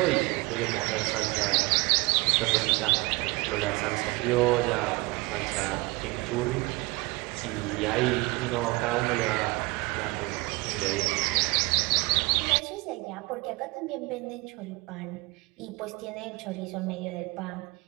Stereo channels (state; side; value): quieter; left; 24.4 dB